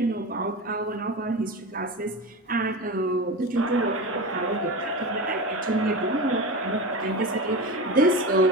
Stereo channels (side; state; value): both; normal; correlation 0.25